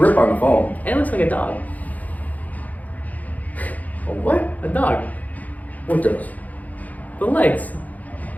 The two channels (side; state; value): right; late; 0.077 ms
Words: on the phone. And it looks like a dog. A what? A dog. What does? The legs.